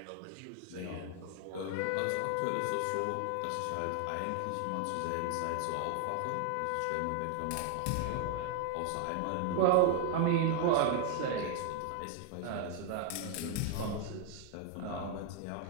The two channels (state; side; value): different; both; correlation 0.00